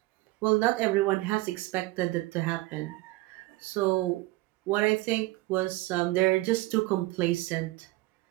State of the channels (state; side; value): quieter; left; 20.0 dB